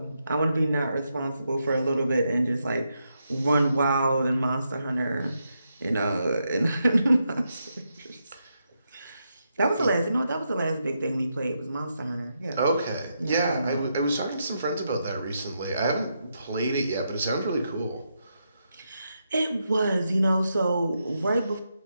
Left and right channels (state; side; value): inverted; both; correlation -0.83